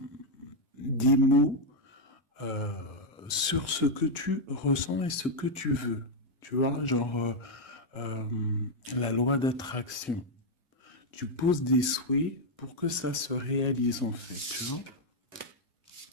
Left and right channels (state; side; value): normal; both; correlation 0.00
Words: des mots euh, sur ce que tu ressens et ce que tu veux. Tu vois, genre euh, la loi d'attraction. Tu poses des souhaits pour que ça se réalise en fait, tu vois.